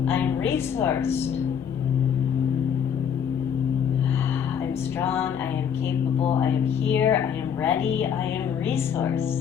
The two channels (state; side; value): quieter; right; 8.0 dB